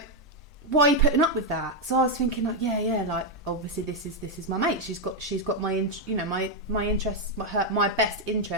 Why are you putting up with that? So I was thinking, like, yeah, like, obviously this is my mate. She's got my interests, my best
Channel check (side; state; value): both; normal; correlation 0.02